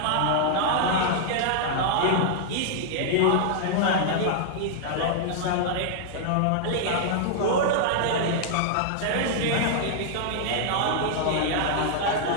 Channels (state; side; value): different; both; correlation -0.01